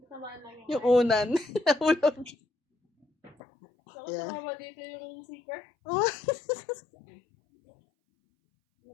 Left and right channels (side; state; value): right; drops out; at 3.4 s